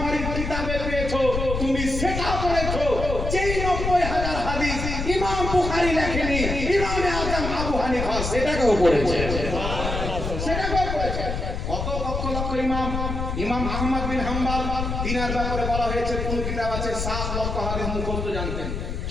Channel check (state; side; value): noise; left; rumble, 3 dB below the sound